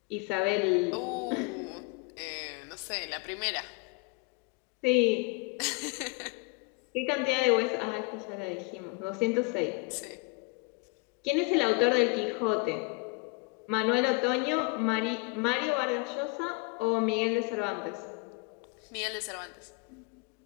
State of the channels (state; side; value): quieter; right; 29.2 dB